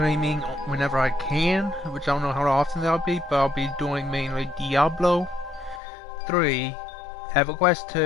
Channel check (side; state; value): right; drops out; at 5.8 s